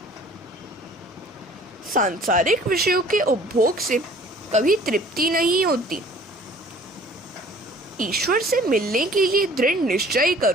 सांसारिक विषयों के उपभोग से कभी तृप्ति नहीं होती। ईश्वर से मिलने के लिए दृढ़ निश्चय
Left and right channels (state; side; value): normal; both; correlation 0.52